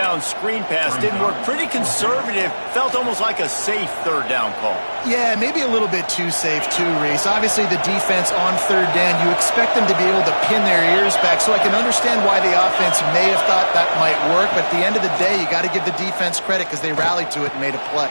screen pass didn't work. Pretty conservative. Felt almost like a safe 3rd down call. Yeah, maybe a little bit too safe too, Reese. Obviously, the defense on 3rd down, you expect them to be able to pin their ears back, so I can understand why the offense may have thought that might work, but at the end of the day, you got to give the defense credit because they rallied to it and made a play.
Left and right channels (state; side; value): inverted; both; correlation -1.00